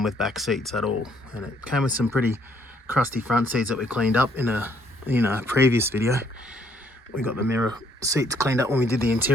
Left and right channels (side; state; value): both; normal; correlation 0.67